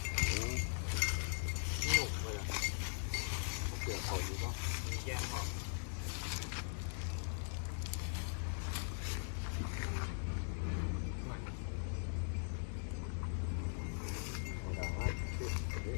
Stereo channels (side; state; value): right; silent; digital silence